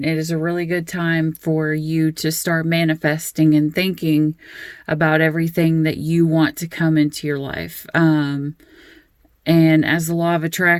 It is a really good time for you to start manifesting and thinking about everything that you want to come into your life. And as the law of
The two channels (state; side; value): identical; both; correlation 1.00